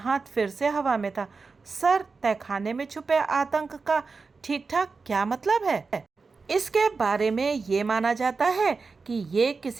फिर से हवा में था। सर, तहखाने में छुपे आतंक का ठीक ठाक क्या मतलब है? इसके बारे में ये माना जाता है कि ये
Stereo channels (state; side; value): quieter; left; 4.5 dB